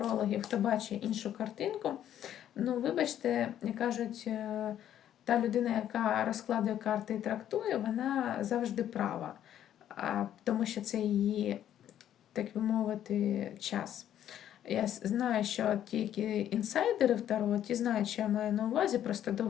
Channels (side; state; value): right; quieter; 10.9 dB